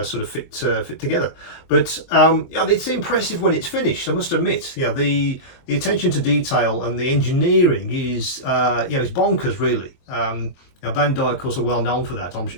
sort of fit together. But it's impressive when it's finished, I must admit. The attention to detail and the engineering is it's bonkers, really. Bandai, of course, are well known for that,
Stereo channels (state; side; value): late; right; 22 ms